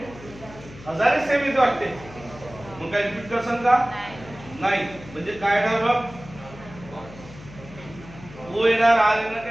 हजारे सेम इथे वाटते. मग काय रिपीट करसान का? नाही. म्हणजे काय येणार बघ? ओ येणार, आर येणार,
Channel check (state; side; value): noise; left; hum, 17 dB below the sound